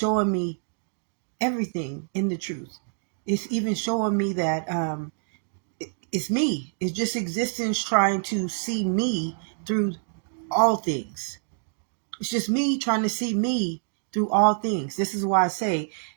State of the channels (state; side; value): silent; left; digital silence